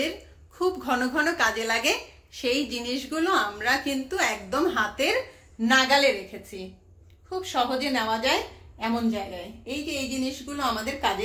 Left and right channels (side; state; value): both; identical; correlation 1.00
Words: খুব ঘন ঘন কাজে লাগে সেই জিনিসগুলো আমরা কিন্তু একদম হাতের নাগালে রেখেছি, খুব সহজে নেওয়া যায় এমন জায়গায়। এই যে এই জিনিসগুলো আমাদের